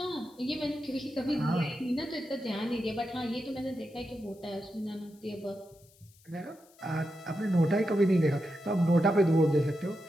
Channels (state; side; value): noise; left; hiss, 29 dB below the sound